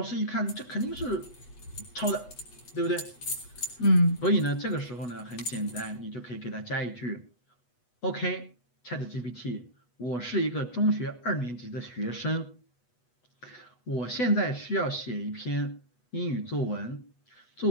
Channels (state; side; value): late; right; 8.1 ms